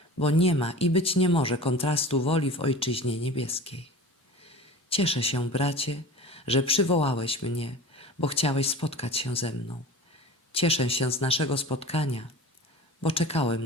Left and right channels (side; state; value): both; normal; correlation 0.36